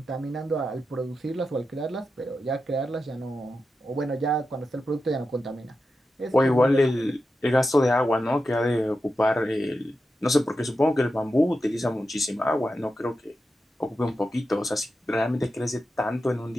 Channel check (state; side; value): normal; both; correlation 0.90